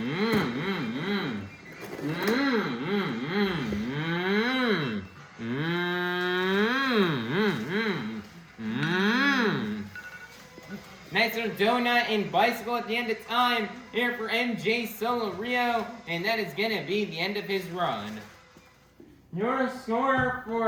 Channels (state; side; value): identical; both; correlation 1.00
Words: Nice little donut and bicycle at the end of time here for MJ Solorio, and that is going to be the end of his run. Your score